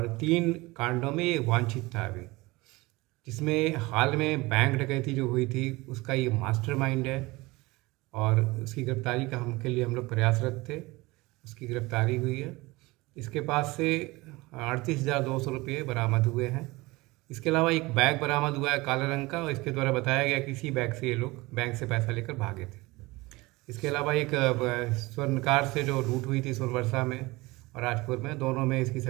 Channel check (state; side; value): quieter; left; 22.0 dB